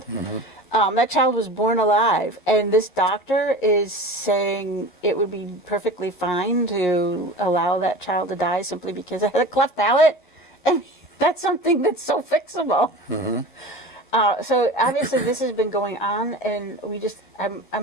That child was born alive, and this doctor is saying it would be perfectly fine to allow that child to die simply because it had a cleft palate. I mean, that's something that's so fixable. So obviously this has been going on, and I'm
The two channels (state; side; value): late; right; 11 ms